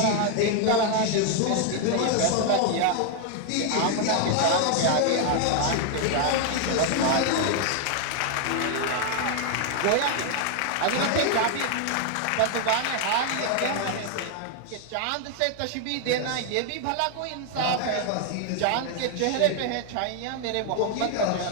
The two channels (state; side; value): different; both; correlation 0.00